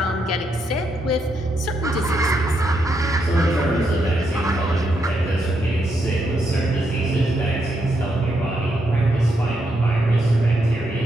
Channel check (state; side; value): normal; both; correlation 0.80